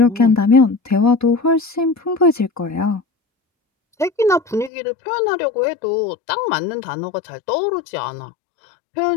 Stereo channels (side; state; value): right; drops out; at 4.7 s